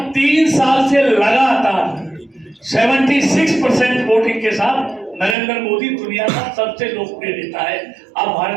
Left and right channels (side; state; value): left; drops out; at 5.4 s